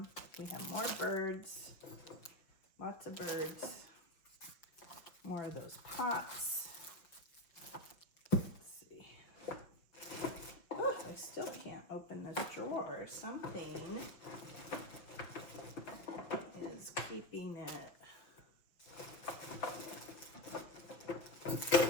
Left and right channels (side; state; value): right; late; 5.9 ms